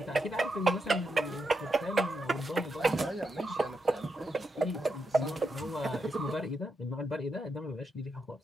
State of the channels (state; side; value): normal; both; correlation 0.84